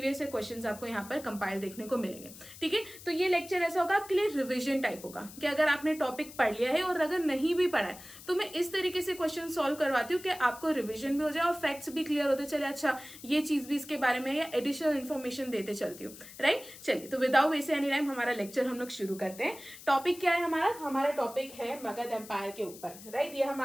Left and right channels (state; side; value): noise; left; hiss, 17 dB below the sound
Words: ईयर क्वेश्चन आपको यहाँ पर कंपाइल देखने को मिलेंगे. ठीक है, तो ये लेक्चर ऐसा होगा आपके लिए रिवीजन टाइप होगा कि अगर आपने टॉपिक पढ़ लिया है और अगर नहीं भी पढ़ा है तो मैं इस तरीके से क्वेश्चन सॉल्व करवाती हूँ कि आपको रिवीजन भी हो जाए और फैक्ट्स भी क्लियर होते चले. अच्छा, ये चीज भी इसके बारे में, या एडिशनल इन्फॉर्मेशन देते चलती हूँ. राइट, चलिए तो विदाउट वेस्ट एनी टाइम हमारा लेक्चर हम लोग शुरू करते हैं. टॉपिक क्या है हमारा टॉपिक है मगध एम्पायर के ऊपर. राइट, ये